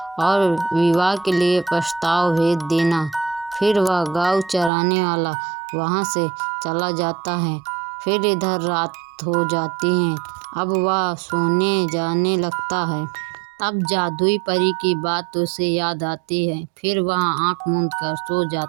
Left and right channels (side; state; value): left; drops out; at 4.7 s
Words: और विवाह के लिए प्रस्ताव भेज देना। फिर वह गौ चराने वाला वहाँ से चला जाता है। फिर इधर रात हो जाती है। अब वह सोने जाने लगता है। तब जादुई परी की बात उसे याद आती है। फिर वह आँख मूंद कर सो